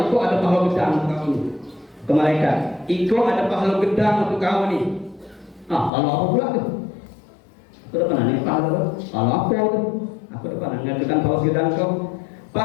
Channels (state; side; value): drops out; right; at 5.9 s